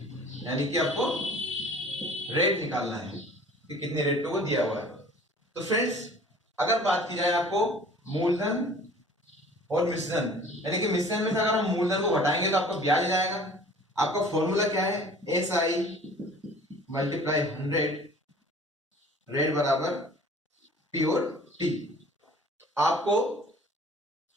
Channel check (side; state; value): both; normal; correlation 0.48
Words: यानी कि आपको रेट निकालना है कि कितने रेट पे वो दिया हुआ है। तो फ्रेंड्स, अगर बात की जाए आपको मूलधन और मिश्रण, यानी कि मिश्रण में से अगर हम मूलधन को घटाएंगे तो आपका ब्याज जाएगा। आपका फॉर्मूला क्या है, SI मल्टीप्लाई 100 रेट बराबर P और T। आपको